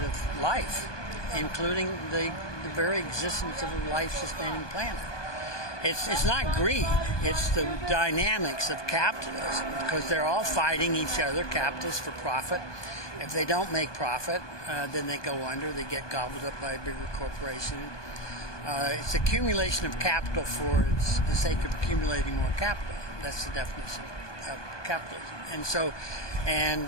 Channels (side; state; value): right; late; 1.2 ms